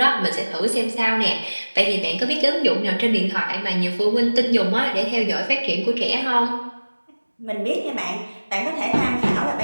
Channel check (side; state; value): both; inverted; correlation -1.00